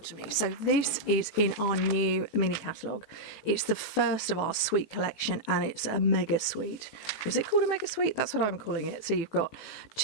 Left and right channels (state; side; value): late; right; 18 ms